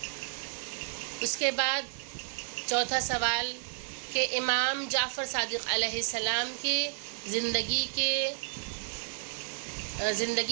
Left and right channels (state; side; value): silent; left; 55 dB below the other